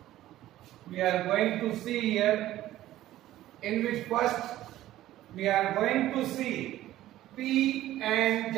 We are going to see here, in which first we are going to see P-N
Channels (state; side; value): quieter; left; 14.3 dB